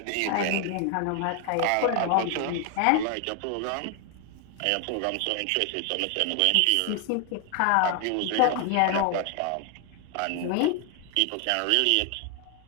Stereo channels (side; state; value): both; different; correlation 0.00